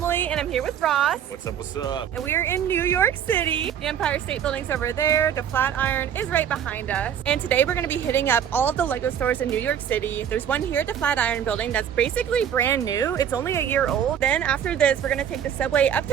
and I'm here with Ross. What's up, what's up? And we are in New York City. The Empire State Building's over there, the Flatiron is right behind us. And today we're going to be hitting up all of the Lego stores in New York City. There's one here at the Flatiron building that's basically brand new. It's only a year old. Then after this, we're going to take the subway up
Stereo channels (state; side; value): quieter; left; 9.1 dB